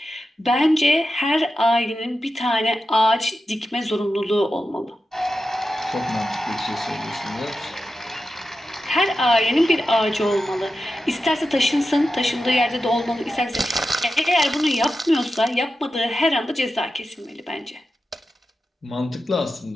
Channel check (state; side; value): normal; both; correlation 0.91